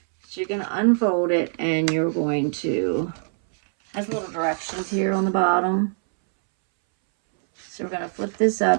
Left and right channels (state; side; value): silent; left; 63 dB below the other